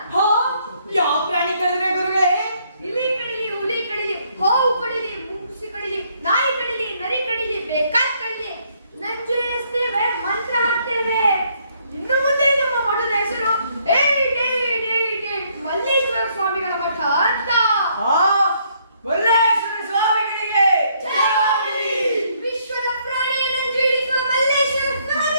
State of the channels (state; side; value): inverted; both; correlation -0.69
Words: ಯಾವ ಪ್ರಾಣಿ ಕಳೆದ್ರೆ ಗುರುಗಳೇ? ಇಲಿ ಕಡಿಲಿ, ಹುಲಿ ಕಡಿಲಿ, ಹಾವು ಕಡಿಲಿ, ಮುಂಗುಸಿ ಕಡಿಲಿ, ನಾಯಿ ಕಡಿಲಿ, ನರಿ ಕಡಿಲಿ, ಬೇಕಾದ್ ಕಡಿಲಿ ನಂಜು ಇಳಿಸ್ತೇವೆ, ಮಂತ್ರ ಹಾಕ್ತೇವೆ. ಇನ್ನು ಮುಂದೆ ನಮ್ಮ ಮಠದ ಹೆಸರು ಮಲ್ಲೇಶ್ವರ ಸ್ವಾಮಿಗಳ ಮಠ ಅಂತ. ಮಲ್ಲೇಶ್ವರ ಸ್ವಾಮಿಗಳಿಗೆ ಜಯವಾಗಲಿ. ವಿಶ್ವದ ಪ್ರಾಣಿಯ ನಂಜು ಇಳಿಸುವ ಮಲ್ಲೇಶ್ವರ